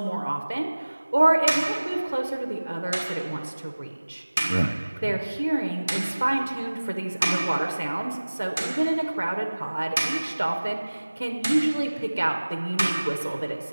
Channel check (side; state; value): both; inverted; correlation -1.00